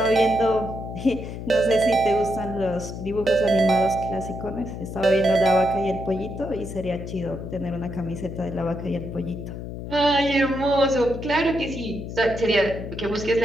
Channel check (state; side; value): noise; left; hum, 8 dB below the sound